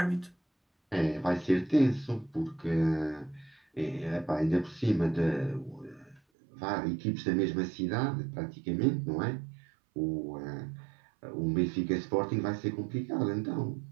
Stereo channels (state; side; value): drops out; left; at 6.2 s